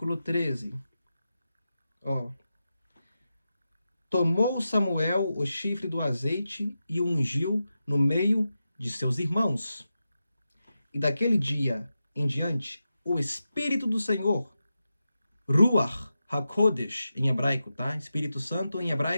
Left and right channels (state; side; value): inverted; both; correlation -0.90